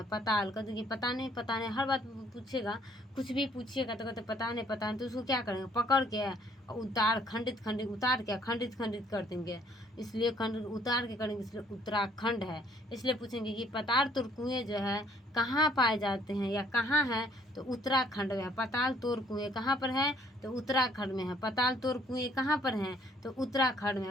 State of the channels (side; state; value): both; normal; correlation 0.63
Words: पताल का देखिए पता नहीं हर बात पूछेगा, कुछ भी पूछिएगा तो कहते पता नहीं, तो उसको क्या करेंगे, पकड़ के उतार खंडित उतार के खंडित कर देंगे, इसलिए खंडित उतार के करेंगे, इसलिए उत्तराखंड है। इसलिए पूछेंगे कि पताल तोड़ कुएं जो है कहाँ पाए जाते हैं या कहाँ है, तो उत्तराखंड में है। पताल तोड़ कुएं कहाँ पर है, तो उत्तराखंड में है। पताल तोड़ कुएं कहाँ पर हैं, तो उत्तराखंड में